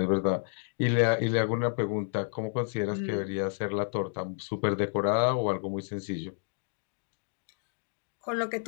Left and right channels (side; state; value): right; silent; digital silence